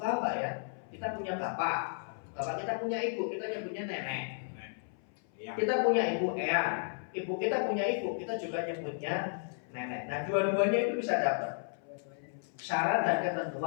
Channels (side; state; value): right; silent; 55 dB below the other